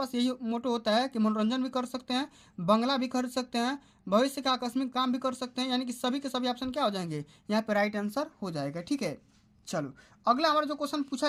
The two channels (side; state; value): both; identical; correlation 1.00